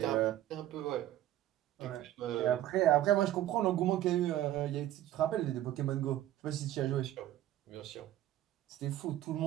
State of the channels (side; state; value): left; quieter; 13.2 dB